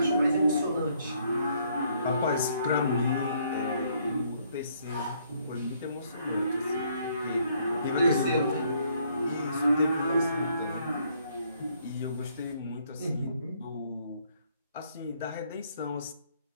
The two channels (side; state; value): both; inverted; correlation -0.68